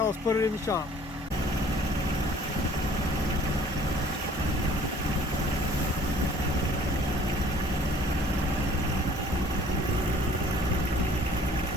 let's put it in the shop.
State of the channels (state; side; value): normal; both; correlation 0.53